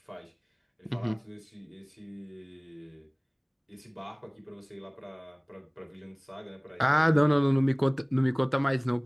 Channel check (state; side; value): identical; both; correlation 1.00